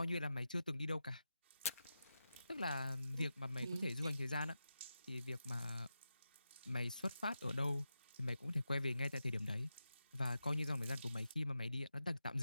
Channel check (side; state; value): both; inverted; correlation -0.90